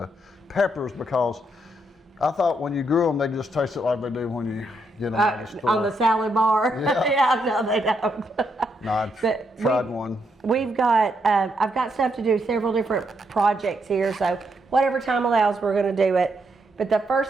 peppers, because I thought when you grew them, they just tasted like they do when you get them out of the store. On the salad bar. Yeah. Yeah, no, they don't. No, I tried one. We've got, I've got stuff to do, several different projects here, so whatever time allows, we're going to do it. But the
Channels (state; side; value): normal; both; correlation 0.78